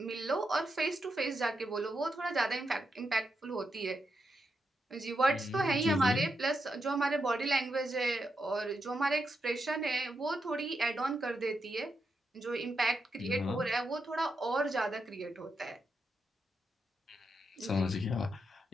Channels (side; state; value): both; normal; correlation 0.84